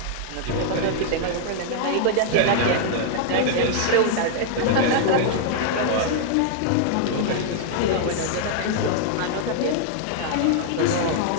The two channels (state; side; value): different; both; correlation -0.01